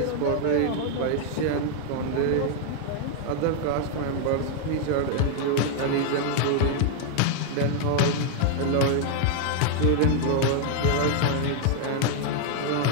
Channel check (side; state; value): both; different; correlation 0.00